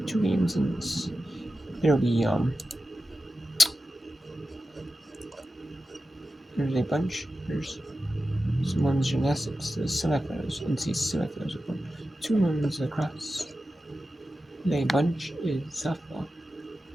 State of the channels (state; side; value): normal; both; correlation 0.92